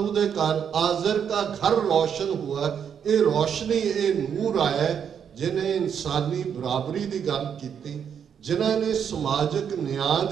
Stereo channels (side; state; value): left; quieter; 7.9 dB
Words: दे घर आज़र का घर रोशन हुआ। ये रोशनी, ये नूर आया जिन्हें इंसानी बराबरी की गल की, जिन्हां ने समाजिक न्याय